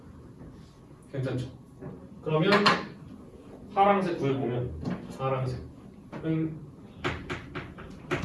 괜찮죠? 그러면 파란색 구해보면 파란색은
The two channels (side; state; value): both; identical; correlation 1.00